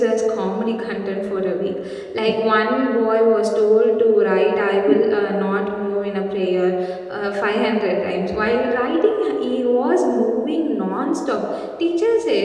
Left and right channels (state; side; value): identical; both; correlation 1.00